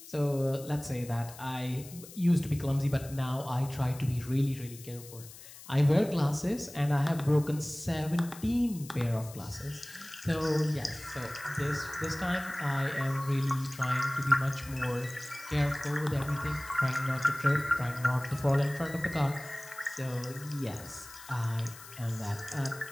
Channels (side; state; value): left; noise; hiss, 17 dB below the sound